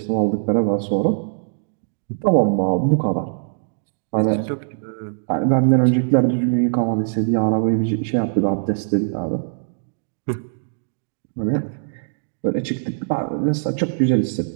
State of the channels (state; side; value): silent; left; digital silence